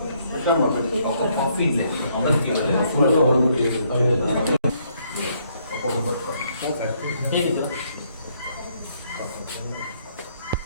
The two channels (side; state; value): both; inverted; correlation -0.70